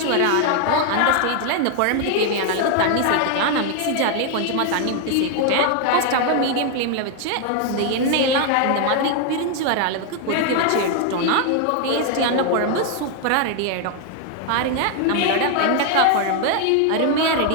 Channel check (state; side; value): different; both; correlation 0.00